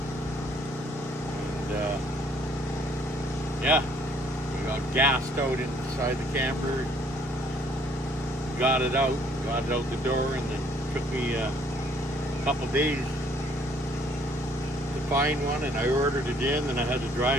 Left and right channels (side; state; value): both; normal; correlation 0.62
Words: And yeah, we got gassed out inside the camper. Got it out the door, and then took me a couple days find one, and I ordered it in, and I had to